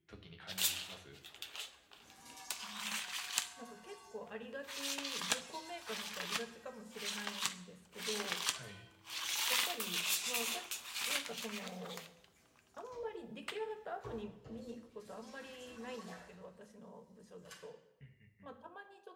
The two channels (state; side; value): identical; both; correlation 1.00